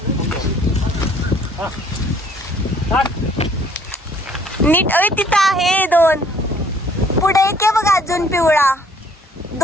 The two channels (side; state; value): both; normal; correlation 0.60